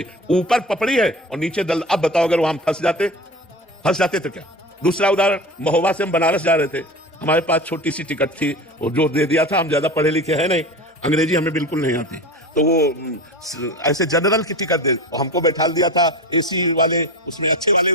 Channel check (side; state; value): both; normal; correlation 0.31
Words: ऊपर पपड़ी है और नीचे दल। अब बताओ, अगर वहां फंस जाते तो क्या? दूसरा उदाहरण, महोबा से हम बनारस जा रहे थे, हमारे पास छोटी सी टिकट थी और जो दे दिया था, हम ज्यादा पढ़े लिखे हैं नहीं, अंग्रेजी हमें बिल्कुल नहीं आती, तो वो ऐसे जनरल की टिकट दे, हमको बैठा दिया था एसी वाले उसमें, अच्छे वाले